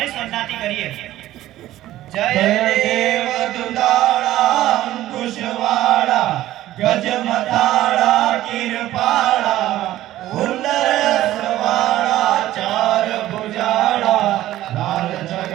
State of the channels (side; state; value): left; quieter; 14.5 dB